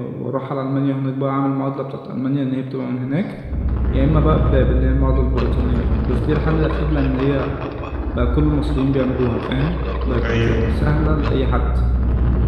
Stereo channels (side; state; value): both; identical; correlation 1.00